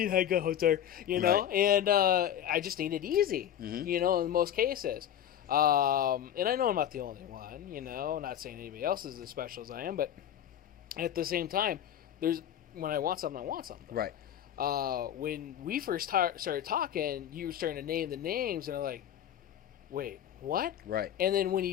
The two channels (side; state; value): right; quieter; 10.3 dB